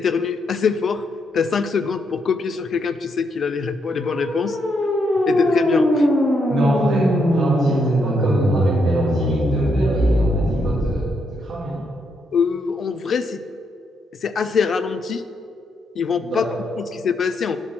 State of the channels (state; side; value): normal; both; correlation 0.78